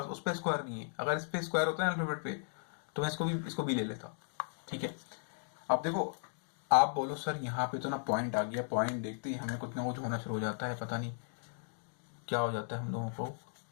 उस पर स्क्वायर नहीं है। अगर इस पे स्क्वायर होता है अल्फाबेट पे, तो मैं इसको भी ले लेता। ठीक है। अब देखो, आप बोलो सर यहाँ पे तो ना पॉइंट आ गया, पॉइंट देखते ही हमें कुछ ना कुछ होना शुरू हो जाता है, पता नहीं क्या हो जाता है हम लोगों को।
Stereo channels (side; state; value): right; silent; digital silence